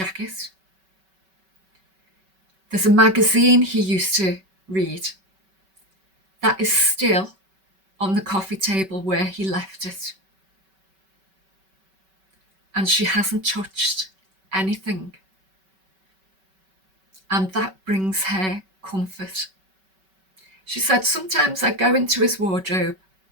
There's a magazine he used to read that is still on the coffee table where he left it. And she hasn't touched anything. And that brings her comfort. She said, sometimes I go into his wardrobe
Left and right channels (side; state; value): left; late; 5.2 ms